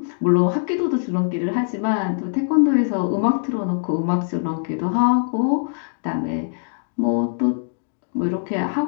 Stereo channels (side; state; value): right; silent; digital silence